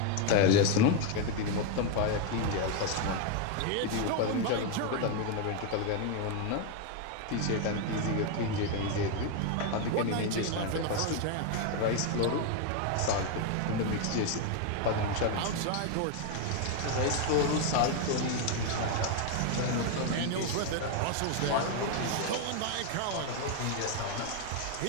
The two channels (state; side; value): different; both; correlation 0.01